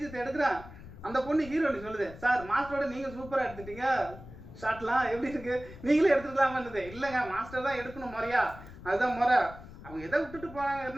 எடுக்கிறேன். அந்த பொண்ணு ஹீரோனி சொல்லுது, சார் மாஸ்டரோட நீங்கள் சூப்பராக எடுத்துட்டீங்க, ஷார்ட்லாம் எப்படி இருக்கு, நீங்களே எடுத்துக்கலாமான்னுது. இல்லைங்க மாஸ்டர் தான் எடுக்கணும் முறையா, அதுதான் முறை. அவங்க எதை விட்டுட்டு போனாங்க,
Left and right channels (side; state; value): left; noise; rumble, 16 dB below the sound